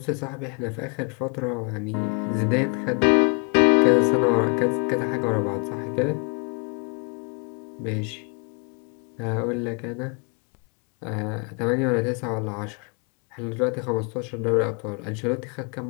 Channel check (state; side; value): quieter; right; 36.3 dB